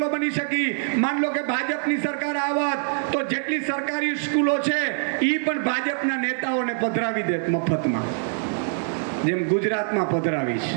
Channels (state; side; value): silent; left; digital silence